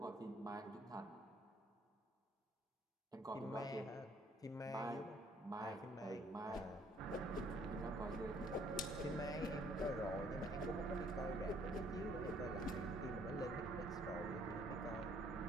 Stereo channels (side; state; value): both; normal; correlation 0.63